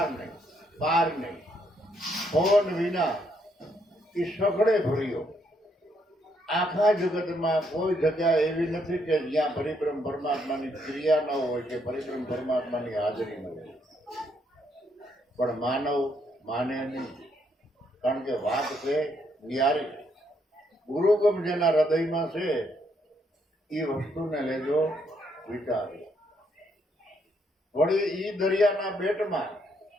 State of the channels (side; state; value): both; normal; correlation 0.73